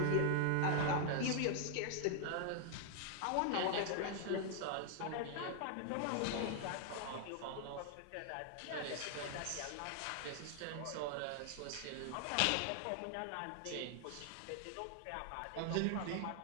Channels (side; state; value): both; different; correlation 0.00